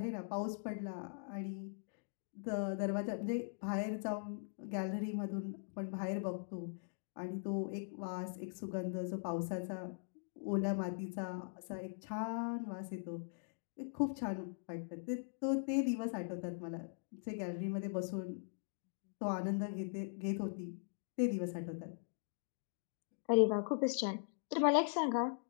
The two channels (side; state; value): right; silent; digital silence